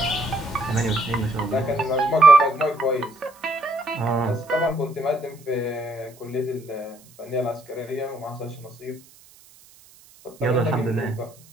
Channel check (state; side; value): noise; right; hiss, 25 dB below the sound